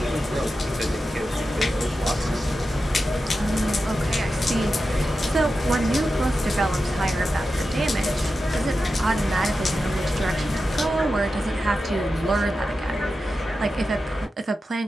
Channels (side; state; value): both; normal; correlation 0.91